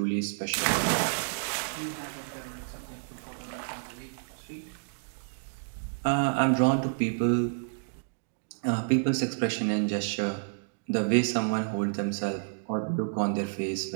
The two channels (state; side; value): silent; left; digital silence